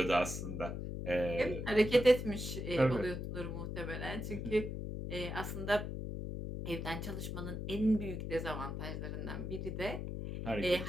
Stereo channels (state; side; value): noise; left; hum, 5 dB below the sound